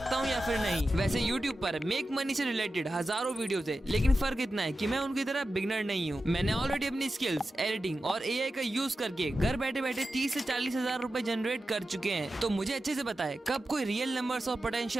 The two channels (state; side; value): normal; both; correlation 0.92